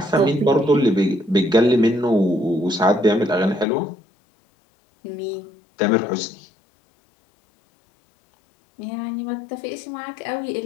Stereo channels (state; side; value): drops out; right; at 3.7 s